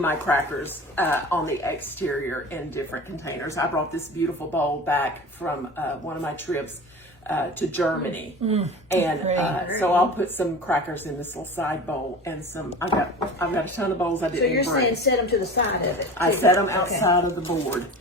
crackers on the exterior in different containers. I brought this beautiful bowl back from one of my trips to Germany. And so I'll put some crackers in this little side bowl and some, I've got a ton of bowls I didn't bring. So you're saying set them to the side of it? I set them outside of the board.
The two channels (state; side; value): normal; both; correlation 0.35